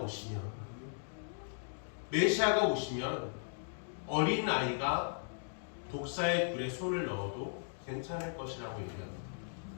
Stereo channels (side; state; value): right; silent; digital silence